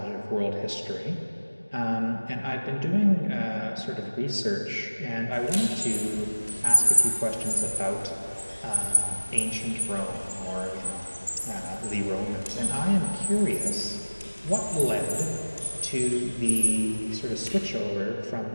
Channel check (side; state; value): both; inverted; correlation -1.00